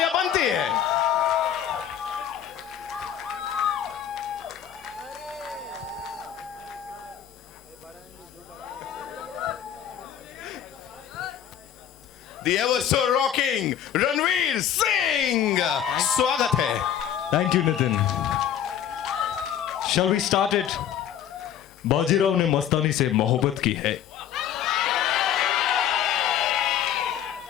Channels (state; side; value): quieter; right; 9.8 dB